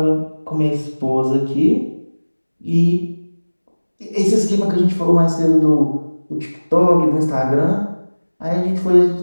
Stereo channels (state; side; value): inverted; both; correlation -1.00